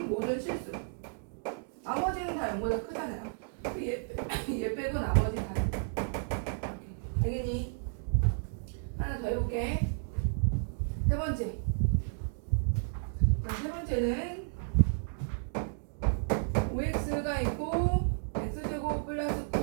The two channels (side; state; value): left; silent; digital silence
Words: 모든 실수. 나머지는 다 0보다 크잖아요. 얘 빼고 나머지 다. 알겠니? 하나 더 해볼게. 세 번째. 자, 세 번째는 5x가 있고 x제곱 플러스